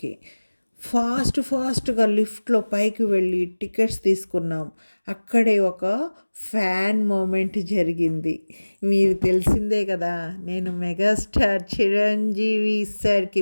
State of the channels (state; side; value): inverted; both; correlation -1.00